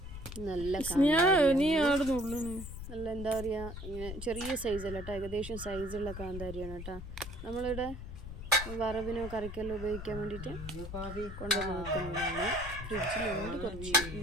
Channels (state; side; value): noise; left; rumble, 9 dB below the sound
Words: നല്ല നല്ല എന്താ പറയുക, ഇങ്ങനെ ചെറിയ സൈസല്ല കേട്ടോ, ഏകദേശം സൈസുള്ള കാന്താരിയാണ് കേട്ടോ. നമ്മളിവിടെ വറവിനോ കറിക്കെല്ലാം ഉപയോഗിക്കാൻ വേണ്ടിയിട്ട് കൊണ്ടുവന്ന് വെക്കുന്നതാണ്. ഫ്രിഡ്ജിലുണ്ട് കുറച്ച്,